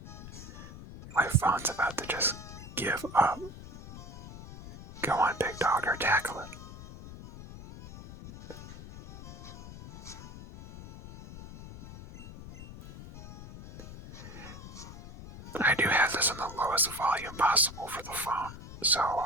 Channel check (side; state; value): left; noise; rumble, 13 dB below the sound